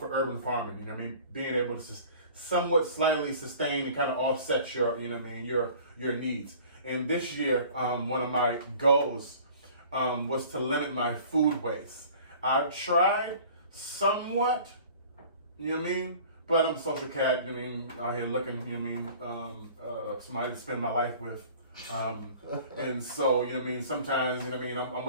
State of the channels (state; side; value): inverted; both; correlation -0.47